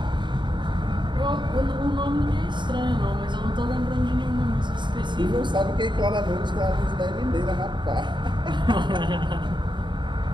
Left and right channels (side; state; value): left; late; 0.23 ms